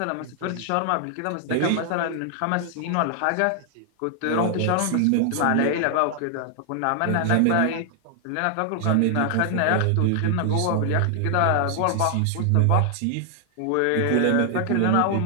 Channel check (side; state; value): both; different; correlation 0.00